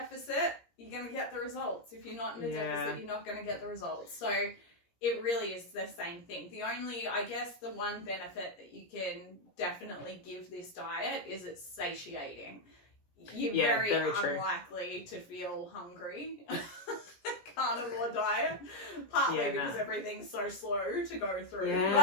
you're going to get the results. If you're not in a deficit, you're not going to get the results. So it really is the same thing. The only, I guess, the one benefit that you can definitely give this diet is it's satiating. You're very unlikely to feel hungry. Carnivore diet, partly because everything's so slow to go through.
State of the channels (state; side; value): late; right; 17 ms